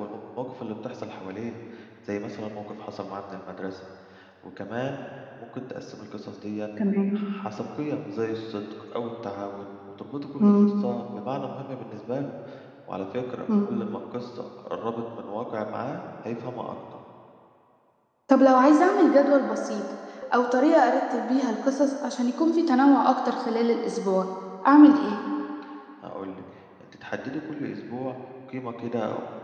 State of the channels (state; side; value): identical; both; correlation 1.00